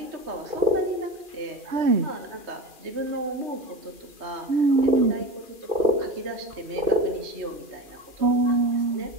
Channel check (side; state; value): left; late; 2.4 ms